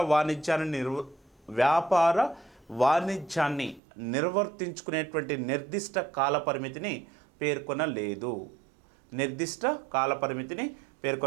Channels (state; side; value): drops out; left; at 3.8 s